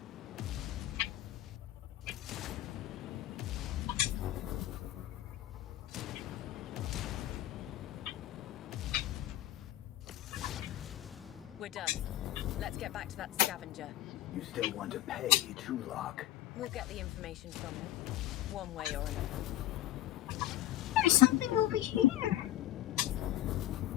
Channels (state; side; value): quieter; right; 14.0 dB